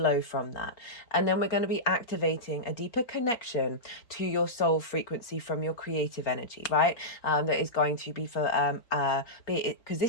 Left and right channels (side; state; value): right; late; 4.3 ms